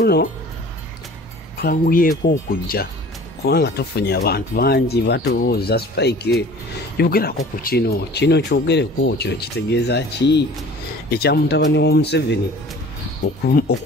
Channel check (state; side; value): normal; both; correlation 0.46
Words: twanguyeko okujja kubanga tufunye abantu bangi batubuuza Spike yogerako ku kino kyogereko kino kitegeeza ki ekya mutabani wa Museveni